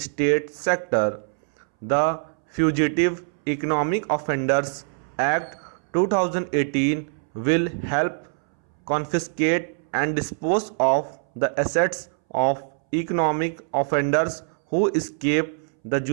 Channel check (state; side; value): silent; left; 63 dB below the other